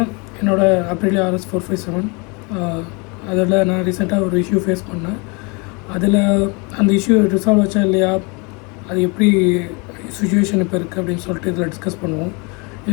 என்னோடய அப்ரிலியா RS457 அதில் நான் ரீசெண்டாக ஒரு இஷ்யூ ஃபேஸ் பண்ணேன். அதில் அந்த இஷ்யூ ரிசால்வ் ஆச்சா இல்லையா, அது எப்படி சுச்சுவேஷன் இப்போ இருக்குது அப்படின்னு சொல்லிட்டு இதில் டிஸ்கஸ் பண்ணுவோம்.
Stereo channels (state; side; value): quieter; right; 30.3 dB